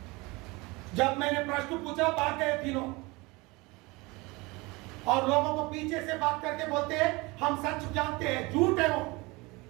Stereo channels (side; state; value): left; quieter; 24.4 dB